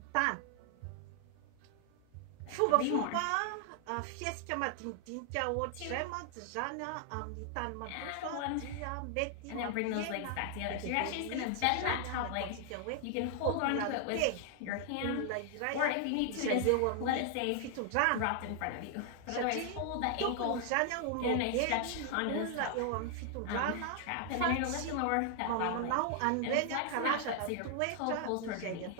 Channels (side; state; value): both; different; correlation 0.00